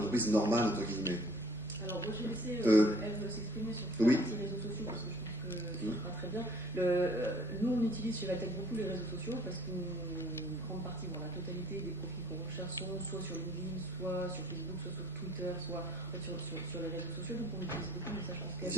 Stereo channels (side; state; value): both; normal; correlation 0.55